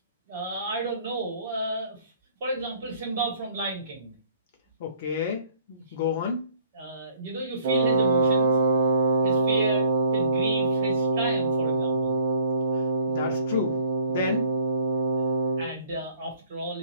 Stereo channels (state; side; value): inverted; both; correlation -0.59